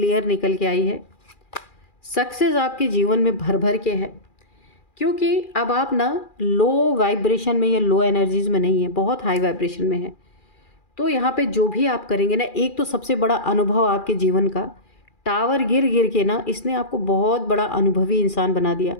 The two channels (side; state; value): right; late; 2.4 ms